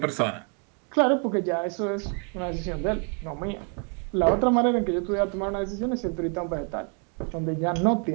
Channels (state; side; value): quieter; left; 38.5 dB